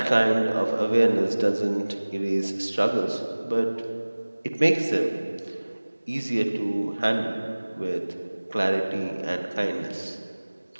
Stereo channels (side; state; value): both; inverted; correlation -1.00